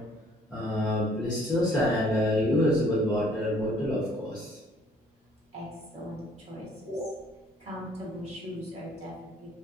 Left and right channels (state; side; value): normal; both; correlation 0.60